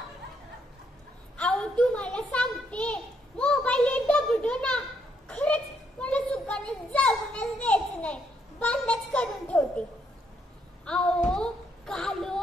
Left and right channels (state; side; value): normal; both; correlation 0.74